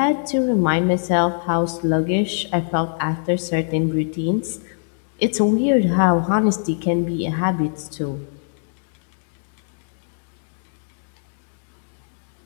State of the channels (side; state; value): right; silent; digital silence